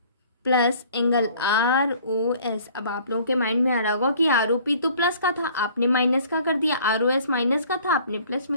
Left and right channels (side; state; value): both; inverted; correlation -0.53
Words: plus angle ROS। अब आप लोगों के माइंड में आ रहा होगा कि ROP तो प्लस का था, आपने माइनस का कर दिया, ROS माइनस का था, आपने प्लस